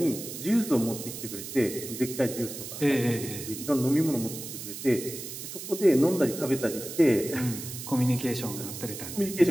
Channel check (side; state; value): right; noise; hiss, 9 dB below the sound